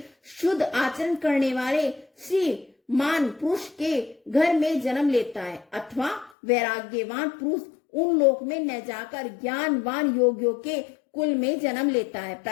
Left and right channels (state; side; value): drops out; right; at 6.3 s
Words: शुद्ध आचरण करने वाले श्रीमान पुरुष के घर में जन्म लेता है, अथवा वैराग्यवान पुरुष उन लोक में न जाकर ज्ञानवान योगियों के कुल में जन्म लेता है।